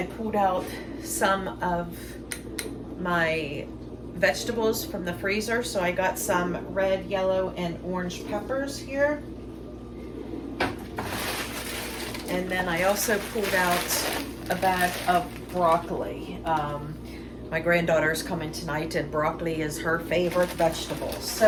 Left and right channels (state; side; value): identical; both; correlation 1.00